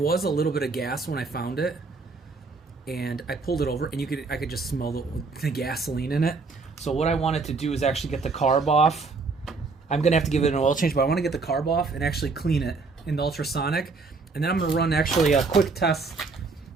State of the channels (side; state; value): left; quieter; 4.1 dB